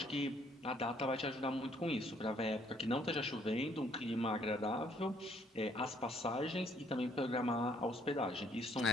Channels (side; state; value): both; normal; correlation 0.65